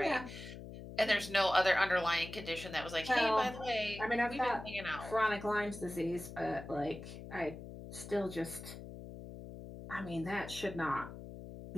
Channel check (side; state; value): left; noise; hum, 12 dB below the sound